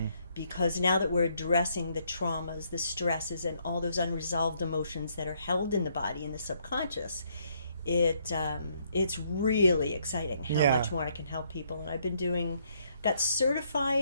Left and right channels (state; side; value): inverted; both; correlation -0.71